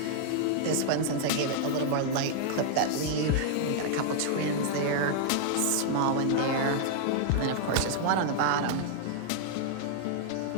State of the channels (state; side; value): different; both; correlation -0.01